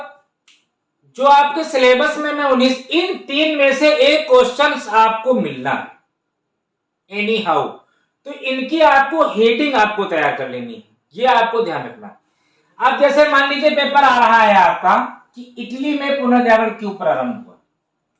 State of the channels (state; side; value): identical; both; correlation 1.00